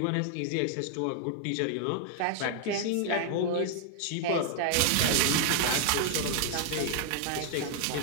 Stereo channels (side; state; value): both; different; correlation 0.00